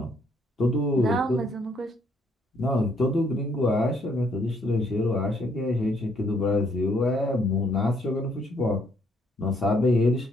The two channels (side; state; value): both; normal; correlation 0.69